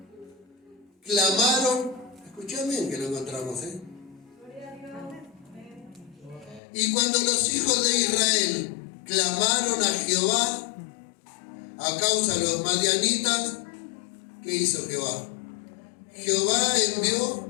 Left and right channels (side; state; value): right; drops out; at 6.6 s